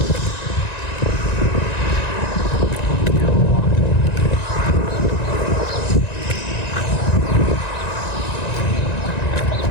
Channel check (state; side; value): late; right; 1.9 ms